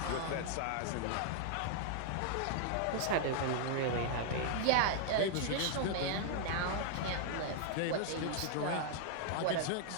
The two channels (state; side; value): different; both; correlation 0.00